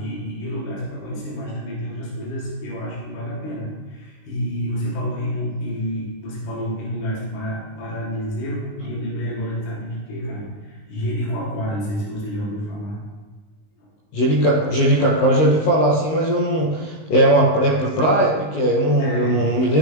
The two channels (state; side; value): late; right; 19 ms